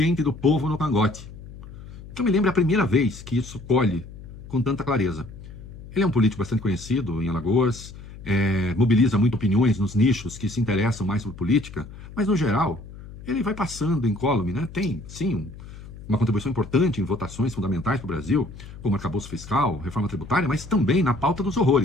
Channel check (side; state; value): left; noise; hum, 15 dB below the sound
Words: do povo no cangote. Que eu me lembro a primeira vez que isso colhe com tanta clareza. Ele é um político bastante conhecido em Alagoas, mobiliza muito opiniões nos nichos que se interessam mais por política, mas no geral, ele vai passando incólume, né? Tem, sim, uma contribuição importante em votações fundamentais para o Brasil, como arcabouço fiscal, reforma tributária, mas também na pauta dos